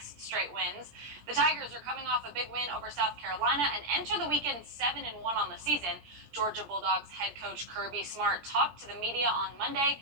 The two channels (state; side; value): late; left; 17 ms